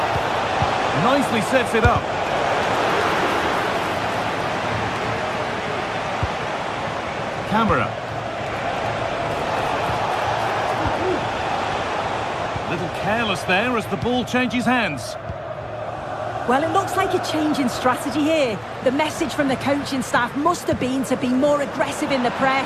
nicely sets it up. Camera. Little careless there as the ball changes hands. Well, it looks like a change in strategy here. The message from the coaching staff must have been to be more aggressive in the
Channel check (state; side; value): identical; both; correlation 1.00